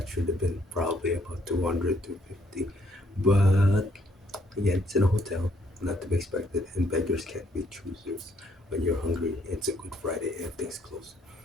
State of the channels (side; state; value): both; normal; correlation 0.68